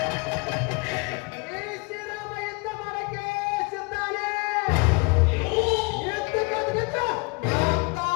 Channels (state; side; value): quieter; right; 30.3 dB